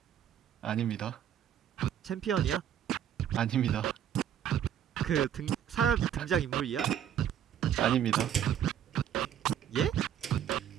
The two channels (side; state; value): left; quieter; 9.8 dB